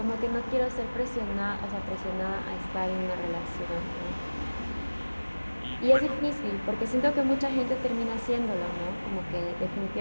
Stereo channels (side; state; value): both; inverted; correlation -1.00